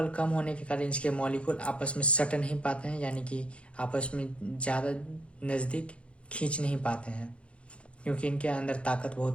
कम होने के कारण इसके मॉलिक्यूल आपस में सट नहीं पाते हैं, यानी कि आपस में ज़्यादा नज़दीक खींच नहीं पाते हैं, क्योंकि इनके अंदर ताकत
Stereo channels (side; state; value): right; late; 0.060 ms